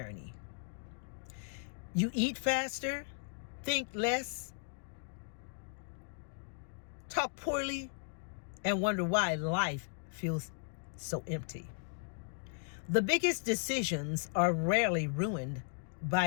You eat faster, think less, talk poorly, and wonder why life feels so empty. The biggest decisions are rarely ruined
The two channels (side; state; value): right; silent; digital silence